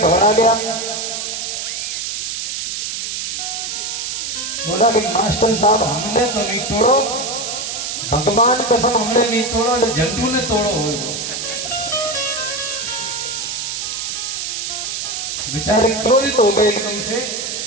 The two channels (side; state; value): right; noise; hiss, 4 dB below the sound